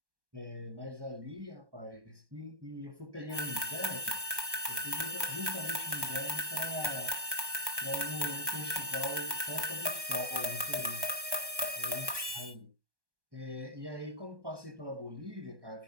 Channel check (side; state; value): left; late; 1.2 ms